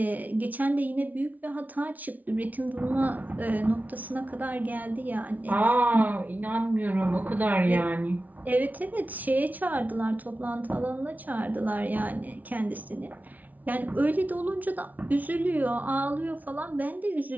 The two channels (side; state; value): left; late; 0.076 ms